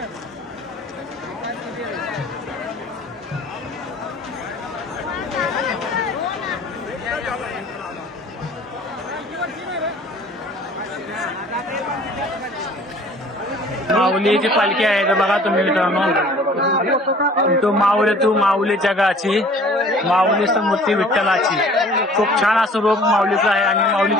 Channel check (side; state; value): both; normal; correlation 0.51